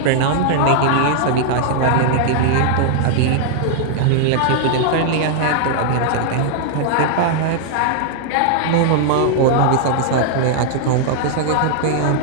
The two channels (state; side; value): different; both; correlation -0.01